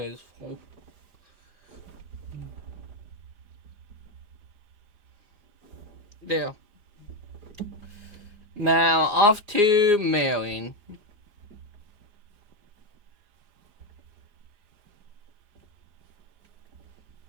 is full. There. Now, off to mailing.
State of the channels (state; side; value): late; left; 4.9 ms